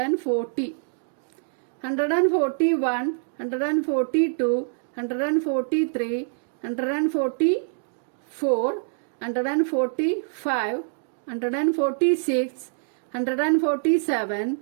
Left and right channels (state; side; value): silent; left; digital silence